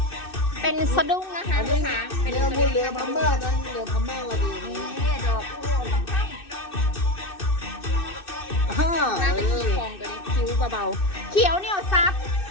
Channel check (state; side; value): late; right; 2.6 ms